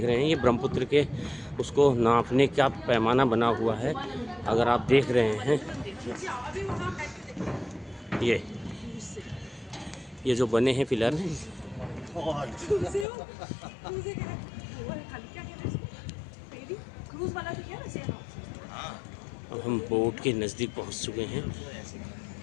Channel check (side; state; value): right; drops out; at 13.1 s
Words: रहे हैं, ये ब्रह्मपुत्र के उसको नापने का पैमाना बना हुआ है। अगर आप देख रहे हैं ये जो बने हैं पिलर, अब हम बोट के नज़दीक पहुंच चुके हैं।